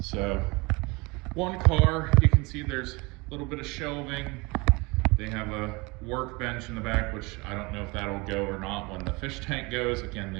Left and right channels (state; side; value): quieter; left; 25.9 dB